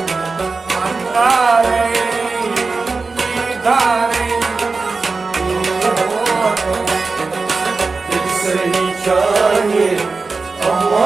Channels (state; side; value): quieter; left; 4.1 dB